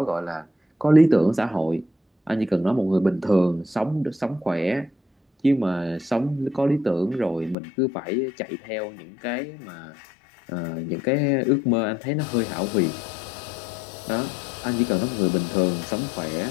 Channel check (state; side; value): drops out; right; at 7.6 s